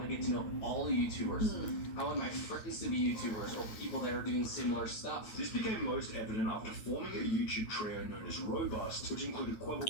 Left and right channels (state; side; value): late; right; 9.3 ms